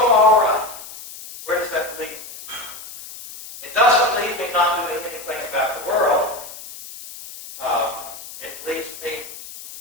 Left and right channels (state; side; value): noise; left; hiss, 14 dB below the sound